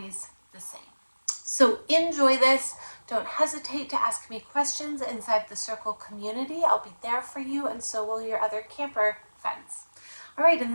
the same. So enjoy this. Don't hesitate to ask me questions inside the Circle community. I'll be there for you, and so will your other camper friends. All right, in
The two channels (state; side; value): inverted; both; correlation -1.00